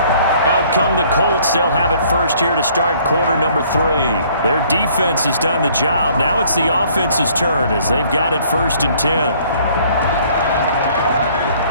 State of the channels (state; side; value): inverted; both; correlation -0.59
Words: Out come the Colts. They'll have it first here to start quarter number 3. Their defense has done the job. Now it's the offense's turn as they've got it 1st and 10.